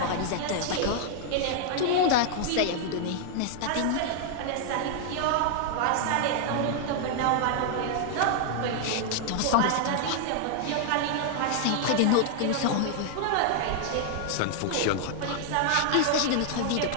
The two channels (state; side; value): different; both; correlation 0.00